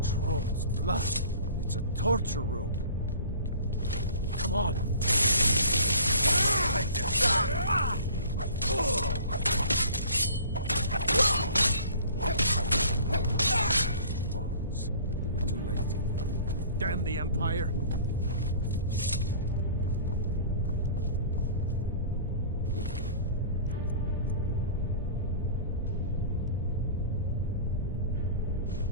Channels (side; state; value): both; inverted; correlation -0.45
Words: Troll's blood. It's a torture room. Come on. Bones. We were too late. Damn the Empire.